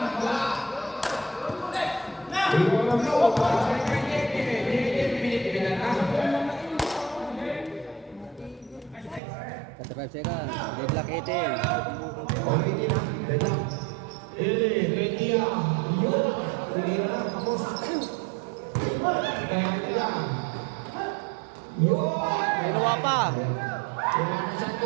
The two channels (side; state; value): left; drops out; at 9.2 s